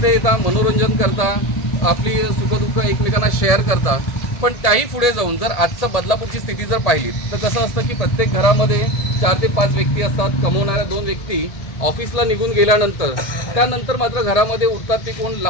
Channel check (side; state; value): right; late; 1.7 ms